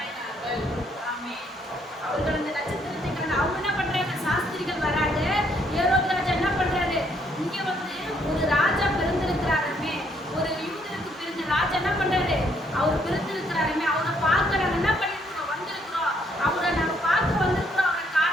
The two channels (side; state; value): both; normal; correlation 0.70